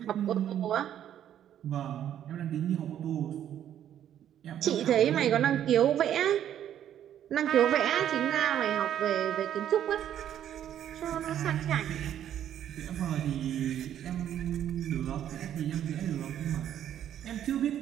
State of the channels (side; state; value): left; quieter; 10.5 dB